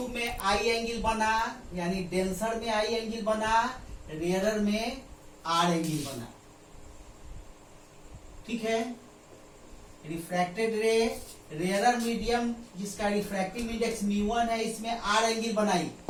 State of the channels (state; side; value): identical; both; correlation 1.00